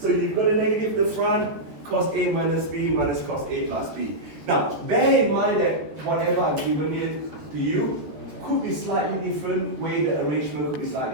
you've got a negative at the front, cos A minus B minus cos A plus B. Now, bear in mind that whatever I've given it to you could be slightly different, way the arrangement could be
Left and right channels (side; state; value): left; late; 13 ms